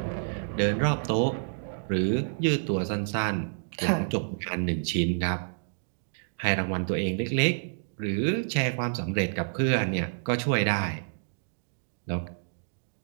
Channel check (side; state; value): left; silent; digital silence